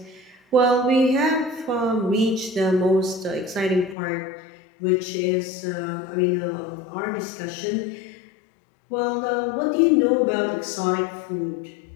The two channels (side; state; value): right; drops out; at 4.0 s